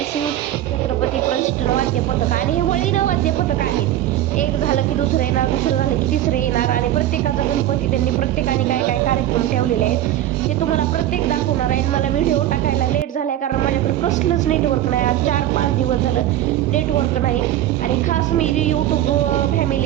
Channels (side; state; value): left; quieter; 12.8 dB